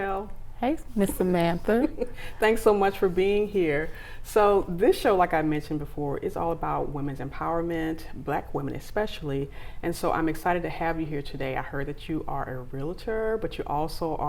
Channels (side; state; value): both; identical; correlation 1.00